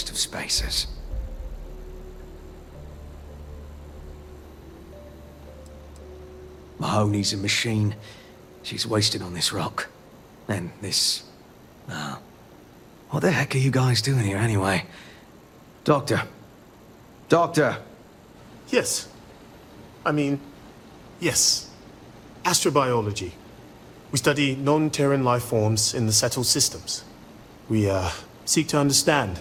of spacers. Mahoney's a machine. She's wasted on this rock. And this... what the heck are you guys doing here anyway? Doctor. Doctor! Yes. Yes. Astrobiology. We study non-Terran life forms in the settled systems. We, seek to understand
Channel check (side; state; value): both; identical; correlation 1.00